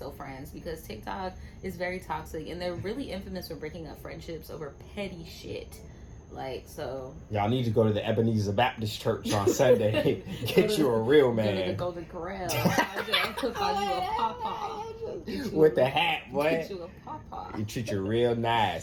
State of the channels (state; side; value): identical; both; correlation 1.00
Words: friends, because TikTok is very toxic, and they're really infamous for breaking up friendships over petty shit. Like, so y'all need to go to the Ebenezer Baptist Church on Sunday. Get you a real man. Go to the Golden Corral. I'll cook on you a pawpaw. With the hat, boy. Get you a pawpaw. You treat you real